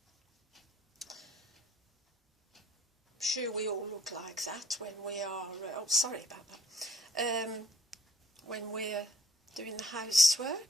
I'm sure we all look like that when we are, oh sorry about that, when we're doing the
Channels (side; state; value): both; normal; correlation 0.62